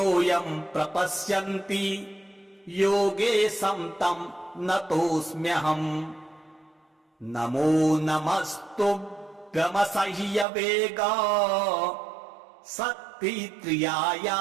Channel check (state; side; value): drops out; left; at 10.5 s